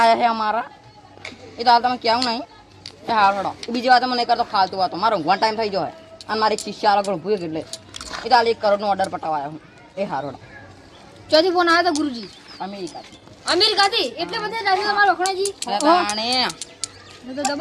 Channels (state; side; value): identical; both; correlation 1.00